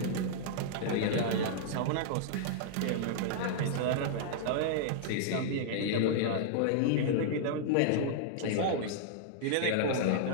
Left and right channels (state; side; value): different; both; correlation -0.01